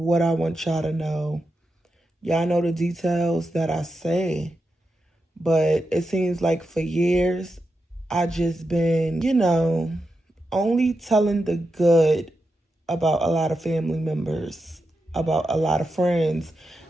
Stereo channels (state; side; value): normal; both; correlation 0.88